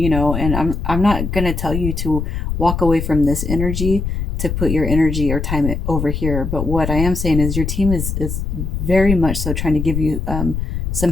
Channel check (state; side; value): noise; left; rumble, 3 dB below the sound